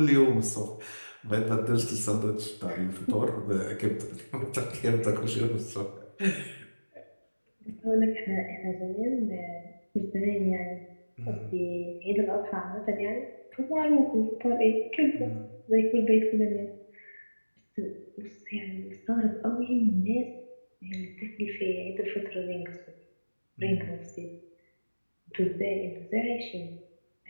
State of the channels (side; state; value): both; inverted; correlation -1.00